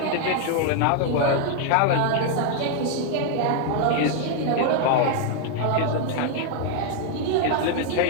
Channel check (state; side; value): different; both; correlation 0.00